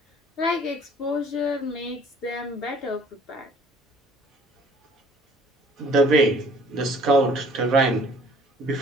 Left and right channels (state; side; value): normal; both; correlation 0.54